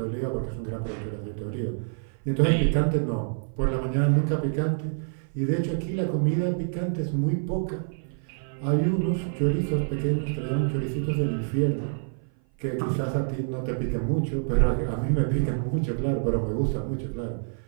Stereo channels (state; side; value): silent; left; 56 dB below the other